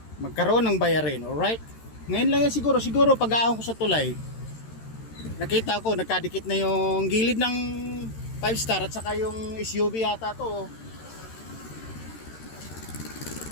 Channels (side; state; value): right; late; 13 ms